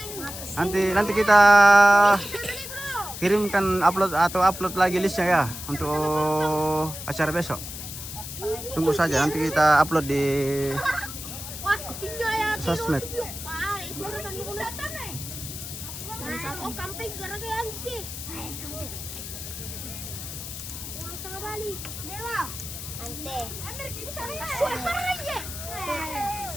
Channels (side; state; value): left; noise; hiss, 9 dB below the sound